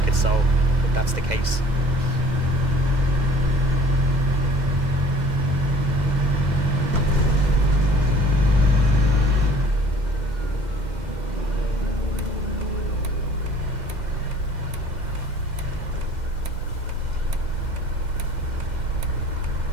so if that's the case.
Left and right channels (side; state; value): left; late; 2.1 ms